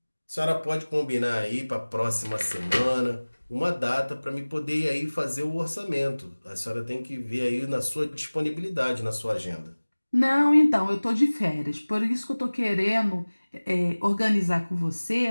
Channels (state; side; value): inverted; both; correlation -1.00